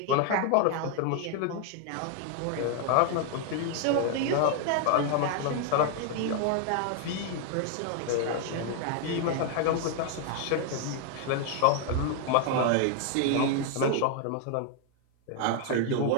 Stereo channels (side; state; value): both; different; correlation 0.00